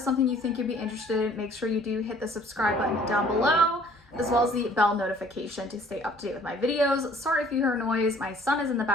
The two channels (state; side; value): normal; both; correlation 0.57